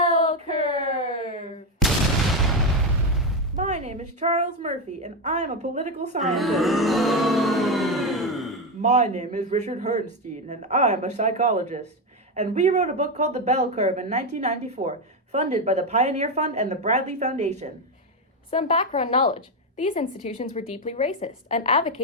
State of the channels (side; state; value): both; normal; correlation 0.10